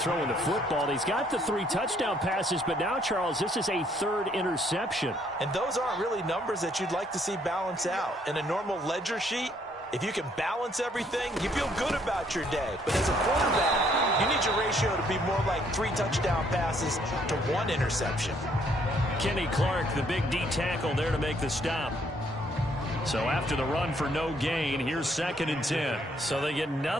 the football. He's got the 3 touchdown passes, but now, Charles, this is a 3rd interception. And those aren't really numbers that you'd like to see balance out. In a normal ledger sheet, if you can balance everything, you feel good about your day. But as a quarterback, you need your ratio to be more like 3 touchdown passes to 1 interception. Kenny Clark, the big D tackle there to make the stop. So after the run for no gain, here's 2nd and 10. So they get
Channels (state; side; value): normal; both; correlation 0.67